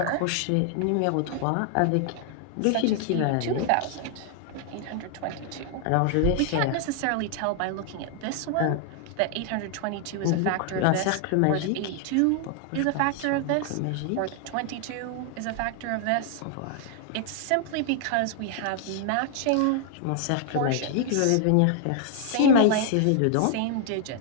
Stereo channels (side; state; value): both; different; correlation 0.00